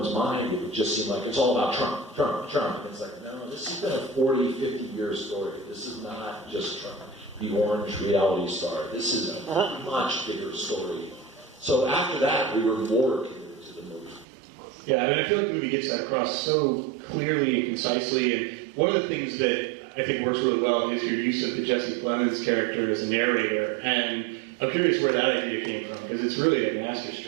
mind, it would just seem like it's all about Trump, Trump, Trump. And it's no, this has been a 40, 50-year story. This is not just Trump, the orange reality star. This is a much bigger story. So after that, we were more committed to the movie. Yeah, I feel like the movie gets that across so clearly and concisely, and one of the things that I think works really well is your use of the Jesse Plemons character as a narrator, and I'm curious where that idea came from, because it's really a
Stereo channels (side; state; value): left; drops out; at 14.2 s